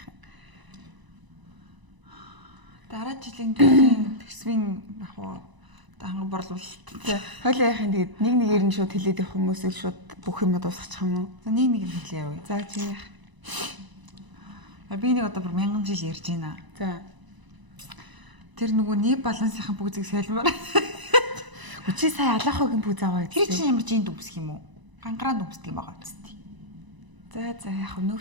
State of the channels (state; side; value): late; left; 1.0 ms